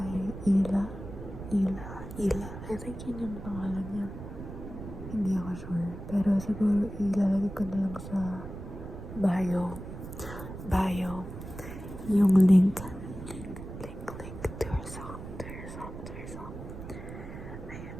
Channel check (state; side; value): noise; right; rumble, 10 dB below the sound